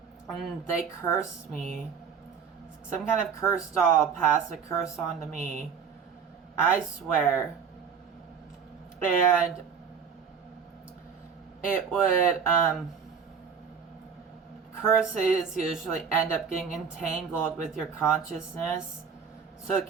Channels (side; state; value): left; quieter; 6.5 dB